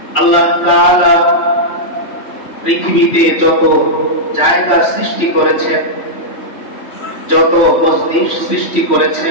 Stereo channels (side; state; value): right; late; 3.1 ms